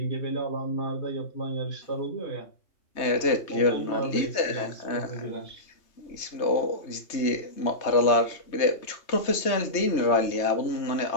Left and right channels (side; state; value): right; late; 3.3 ms